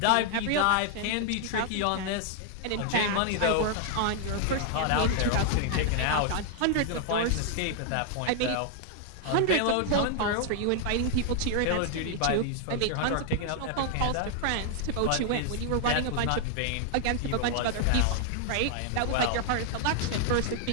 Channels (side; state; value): both; different; correlation 0.00